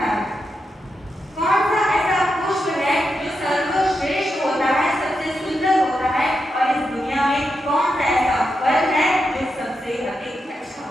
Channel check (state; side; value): normal; both; correlation 0.86